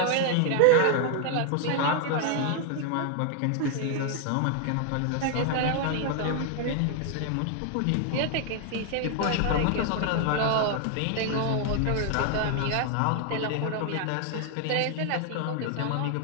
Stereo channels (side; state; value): both; different; correlation 0.00